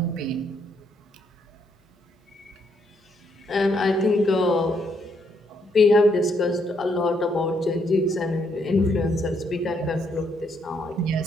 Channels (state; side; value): normal; both; correlation 0.73